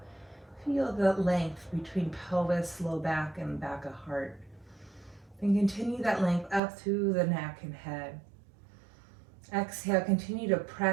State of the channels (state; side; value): drops out; left; at 6.6 s